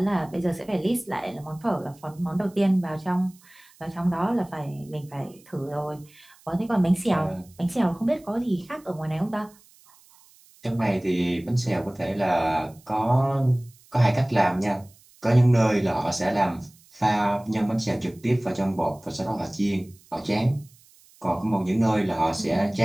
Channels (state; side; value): noise; right; hiss, 28 dB below the sound